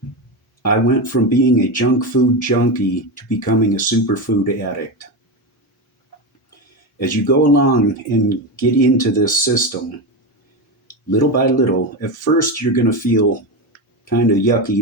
I went from being a junk food junkie to becoming a superfood addict. As you go along and get into this system, little by little, at first you're going to feel kind of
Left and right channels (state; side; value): normal; both; correlation 0.16